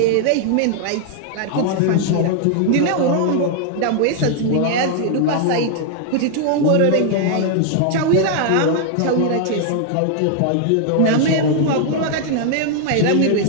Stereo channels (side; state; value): both; different; correlation 0.00